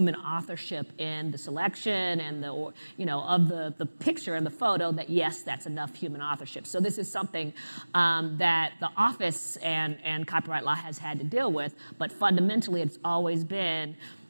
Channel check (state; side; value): inverted; both; correlation -1.00